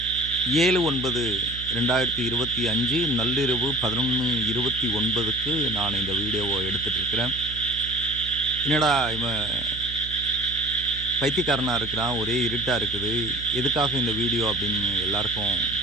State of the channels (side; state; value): right; noise; hum, 11 dB below the sound